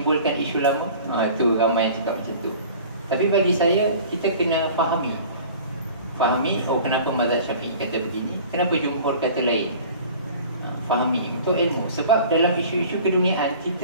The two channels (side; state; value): both; inverted; correlation -0.44